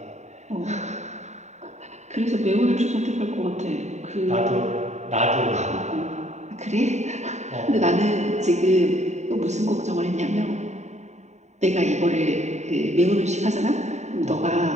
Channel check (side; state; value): left; late; 0.33 ms